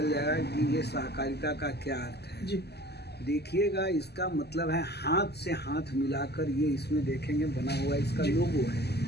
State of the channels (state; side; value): late; right; 0.48 ms